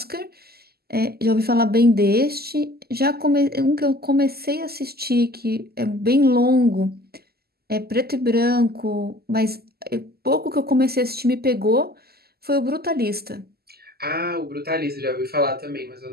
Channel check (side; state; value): left; late; 0.46 ms